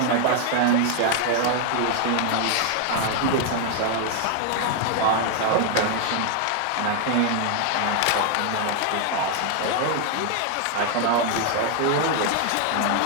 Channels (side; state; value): both; different; correlation 0.00